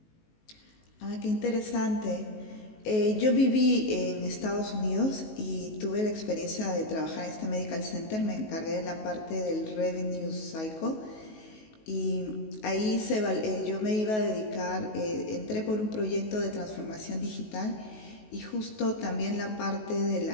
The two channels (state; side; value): late; right; 19 ms